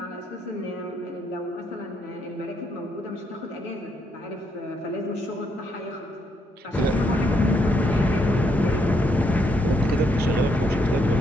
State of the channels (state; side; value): normal; both; correlation 0.75